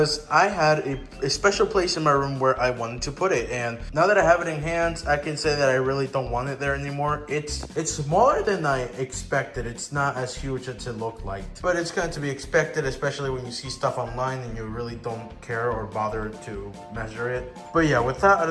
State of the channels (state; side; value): identical; both; correlation 1.00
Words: I had a special place in my room where I wanted to put it, and now that I have it in hands, I can say that I really don't want it there anymore. It's smaller than I expected. It's not as huge as it looked like, but it's going to be expected, especially when you see stuff online and you really don't care or bother to measure it. But yeah, with that out